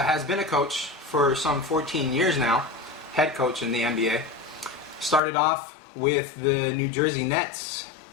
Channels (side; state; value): right; drops out; at 5.2 s